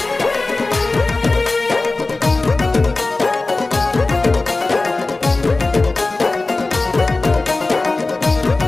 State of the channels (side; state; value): right; quieter; 3.3 dB